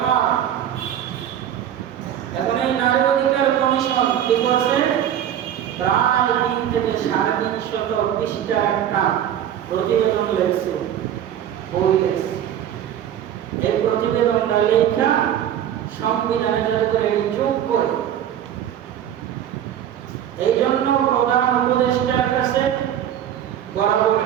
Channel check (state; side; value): quieter; left; 10.4 dB